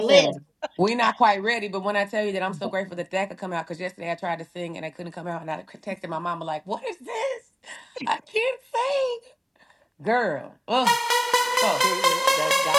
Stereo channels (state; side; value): identical; both; correlation 1.00